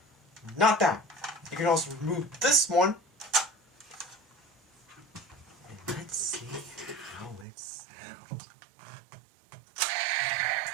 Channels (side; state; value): left; drops out; at 7.5 s